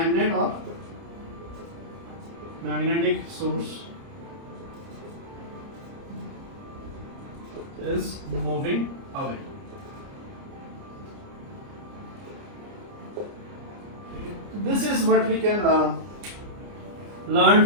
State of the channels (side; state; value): left; late; 29 ms